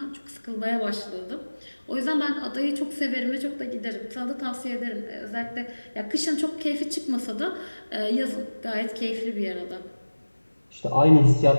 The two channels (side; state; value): both; inverted; correlation -1.00